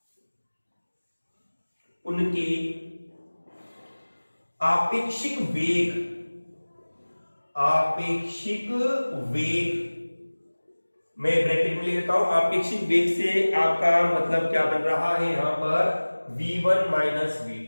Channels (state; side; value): inverted; both; correlation -1.00